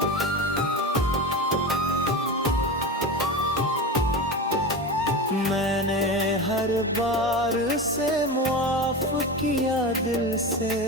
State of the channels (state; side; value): normal; both; correlation 0.25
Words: मैंने हर बार से मुआफ किया दिल से,